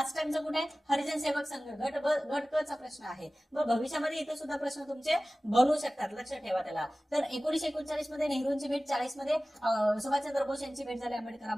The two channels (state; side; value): normal; both; correlation 0.97